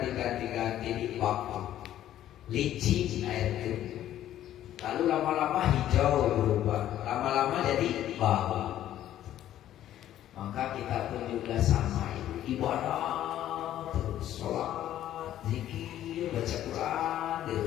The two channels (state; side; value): quieter; right; 12.2 dB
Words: di waktu, licin air itu, lalu lama-lama hijau berubah, lama-lama jadi bau. Maka kita pun juga sama itu, ibadah terus, sholat, zikir, baca Quran di